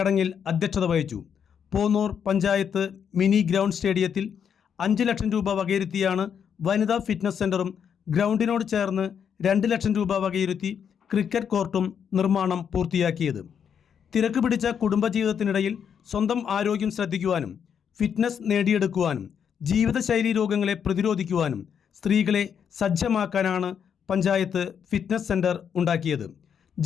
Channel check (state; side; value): quieter; right; 7.7 dB